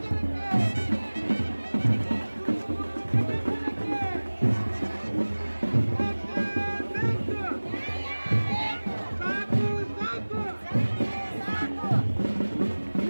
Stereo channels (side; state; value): both; inverted; correlation -1.00